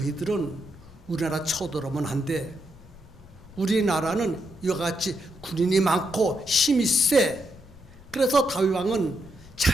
우리나라 쳐들어오면 안 돼. 우리나라는 이와 같이 군인이 많고 힘이 세. 그래서 다윗 왕은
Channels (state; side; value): noise; left; rumble, 23 dB below the sound